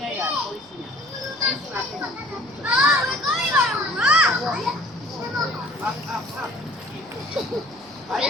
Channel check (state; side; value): noise; right; rumble, 29 dB below the sound